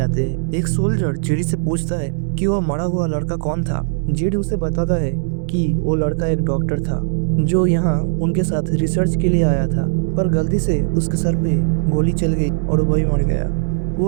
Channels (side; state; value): left; silent; digital silence